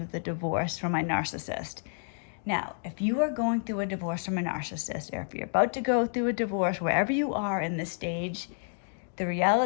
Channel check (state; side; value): silent; right; digital silence